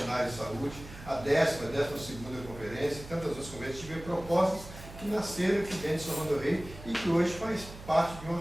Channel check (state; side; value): noise; right; hum, 15 dB below the sound